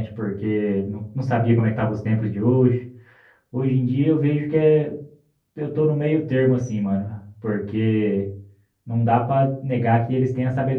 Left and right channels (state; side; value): identical; both; correlation 1.00